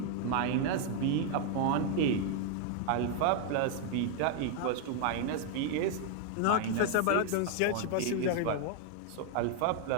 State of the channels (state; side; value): different; both; correlation 0.00